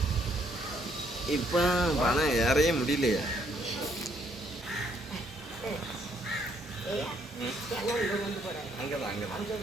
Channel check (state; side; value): normal; both; correlation 0.69